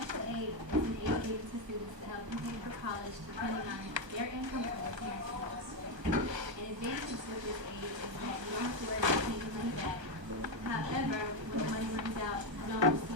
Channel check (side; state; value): left; late; 1.2 ms